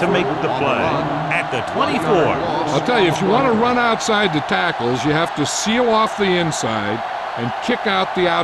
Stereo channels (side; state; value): both; identical; correlation 1.00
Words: make the play at at the 24. I'll tell you, if you want to run outside the tackles, you have to seal off the inside and kick out the